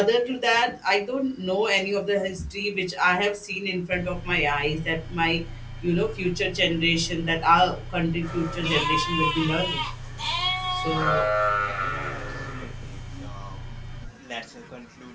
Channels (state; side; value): identical; both; correlation 1.00